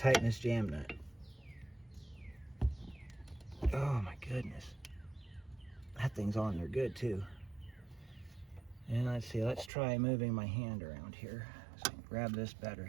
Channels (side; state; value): left; drops out; at 9.7 s